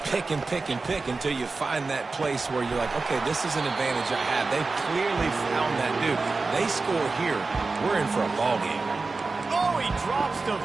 pick and pick and pick until you find that place where you're like, okay, this is an advantage I have. They clearly found that dude. They score here, we're in for a ball game. Oh, he drops the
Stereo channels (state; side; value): quieter; left; 3.9 dB